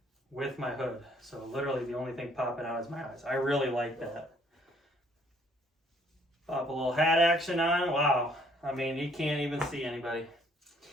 with my hood. So literally the only thing popping out is my eyes. I really like that. Pop a little hat action on. Wow. I mean, you can't even see anybody.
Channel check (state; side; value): normal; both; correlation 0.63